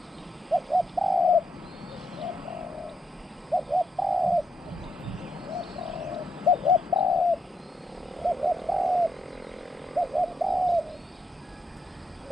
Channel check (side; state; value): both; normal; correlation 0.80